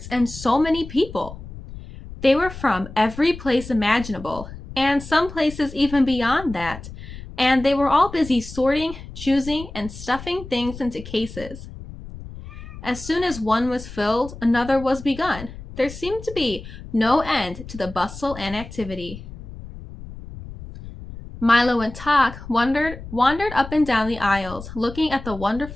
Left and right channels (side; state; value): left; noise; rumble, 13 dB below the sound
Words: and so many people. They were from every place imaginable, and some places even beyond that, and they were all busy sorting, choosing, and stuffing things into cases. As soon as one was filled, another was begun. There seemed to be no end to the bustle and activity. Milo and Tok wandered up and down the aisles, looking at the